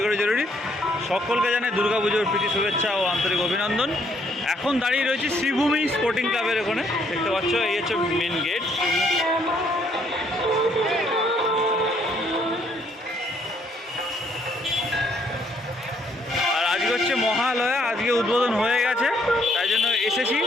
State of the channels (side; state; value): both; normal; correlation 0.68